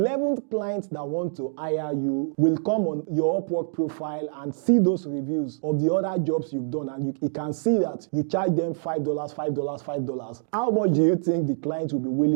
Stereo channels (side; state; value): left; silent; digital silence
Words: client that want to hire you will come on your Upwork profile and see those reviews of the other jobs you've done, and you can see that you charge them $5. How much do you think the client will be